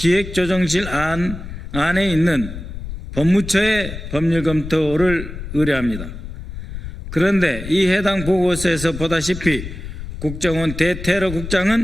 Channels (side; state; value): left; noise; rumble, 9 dB below the sound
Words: 안에 있는 법무처의 법률 검토를 의뢰합니다. 그런데 이 해당 보고서에서 보다시피 국정원